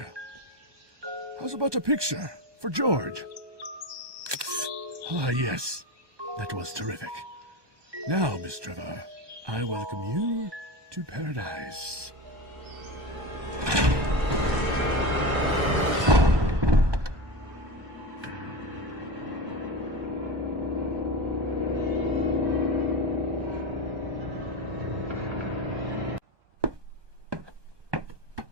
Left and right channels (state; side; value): late; left; 1.2 ms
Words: How's about a picture for George? Ah, yes. That was terrific. Now, Miss Trevor, I welcome you to paradise.